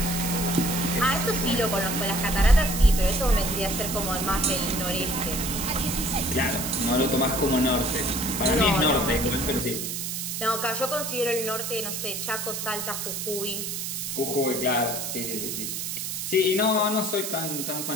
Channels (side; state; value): right; noise; hiss, 4 dB below the sound